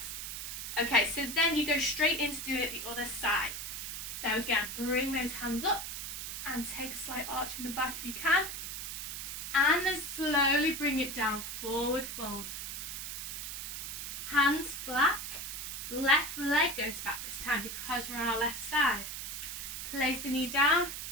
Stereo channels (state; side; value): noise; right; hiss, 6 dB below the sound